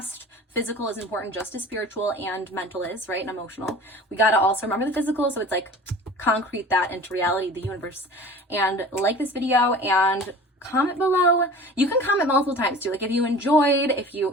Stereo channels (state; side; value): normal; both; correlation 0.41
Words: Physical is important just as spiritual and mental is, right? And emotional. We got to also remember the physical. So it's like concrete that into reality, the universe. And like this video and comment below. You can comment multiple times too. Like if you enjoyed,